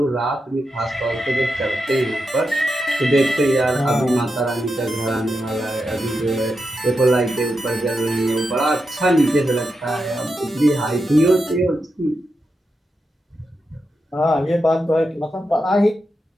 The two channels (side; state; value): both; normal; correlation 0.87